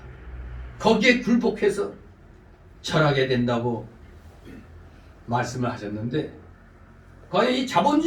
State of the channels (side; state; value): both; identical; correlation 1.00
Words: 거기에 굴복해서 절하게 된다고 말씀을 하셨는데, 과연 이